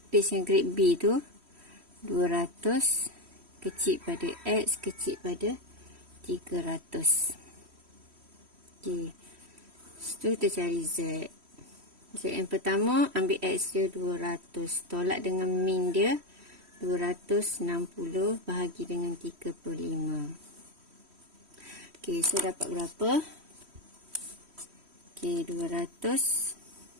yang grade B tu. 200 kecil pada X kecil pada 300. Okay. Setelah kita cari Z. Z yang pertama, ambil X dia 200. Tolak dengan min dia 260 bahagi dengan 35. Okay, so dapat berapa? Okay, 200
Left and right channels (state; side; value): late; left; 3.1 ms